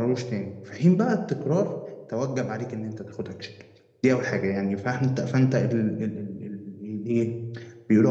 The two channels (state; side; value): identical; both; correlation 1.00